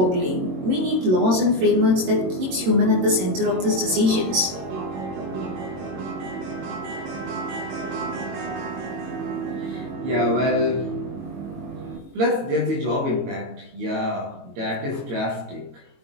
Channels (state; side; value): late; left; 22 ms